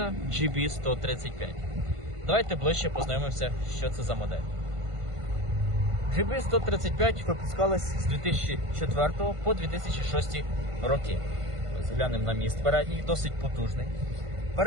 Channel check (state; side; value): late; left; 1.5 ms